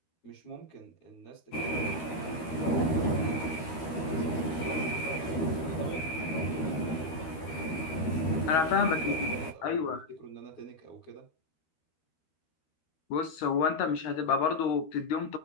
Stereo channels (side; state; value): right; late; 13 ms